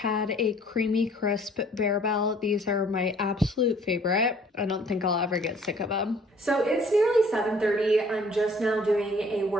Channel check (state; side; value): normal; both; correlation 0.56